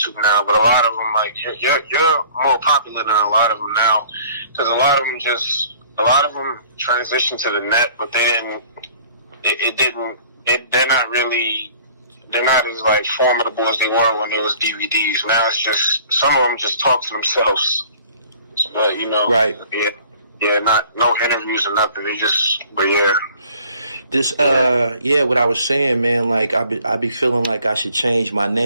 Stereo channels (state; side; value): inverted; both; correlation -0.53